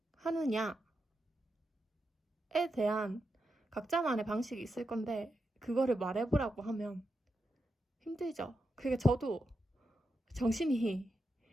대한 각자만의 방식이 있을 건데 그거를 말해보라고 하면 힘들죠. 그게 저도 정신이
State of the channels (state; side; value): normal; both; correlation 0.87